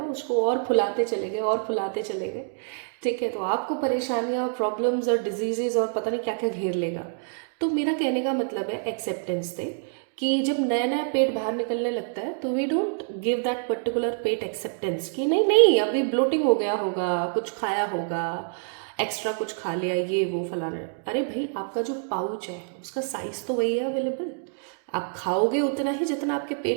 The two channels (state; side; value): silent; left; digital silence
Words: उसको और फुलाते चले गए और फुलाते चले गए, ठीक है, तो आपको परेशानियां, प्रॉब्लम्स और डिजीजेज और पता नहीं क्या क्या घेर लेगा। तो मेरा कहने का मतलब है एक्सेप्टेंस दे, कि जब नया नया पेट बाहर निकलने लगता है तो we don't give that particular pet acceptance कि नहीं नहीं अभी ब्लोटिंग हो गया होगा, कुछ खाया होगा, एक्स्ट्रा कुछ खा लिया, ये वो फलाना। अरे भाई, आपका जो पाउच है उसका साइज तो वही है अवेलेबल, आप खाओगे उतना ही जितना आपके